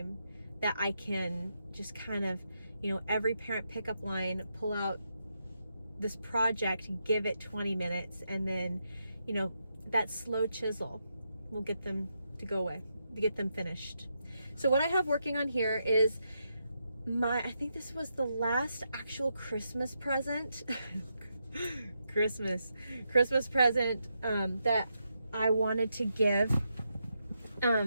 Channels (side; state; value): both; inverted; correlation -0.83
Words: that I can just kind of, every parent pickup line, pull out this project, give it 20 minutes, and then, that slow chisel will get them to go away, to get them finished. So what I have working on here is I think this was the last actual Christmas present, Christmas present that I wanted to give.